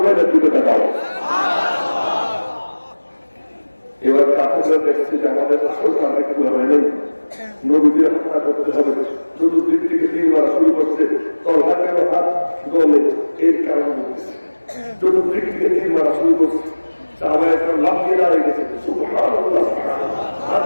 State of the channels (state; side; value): inverted; both; correlation -1.00